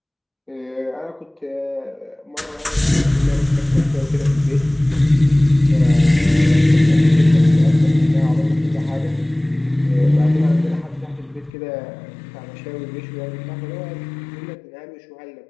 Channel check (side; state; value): right; drops out; at 11.5 s